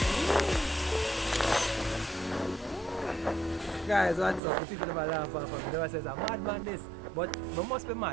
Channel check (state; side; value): drops out; left; at 4.4 s